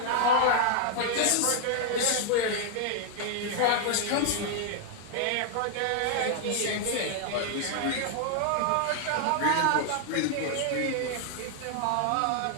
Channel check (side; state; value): both; different; correlation 0.00